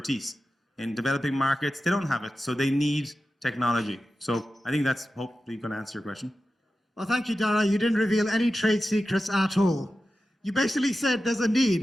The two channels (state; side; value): normal; both; correlation 0.93